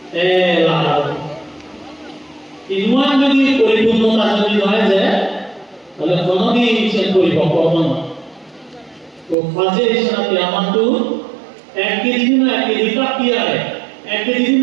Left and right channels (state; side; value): drops out; left; at 9.3 s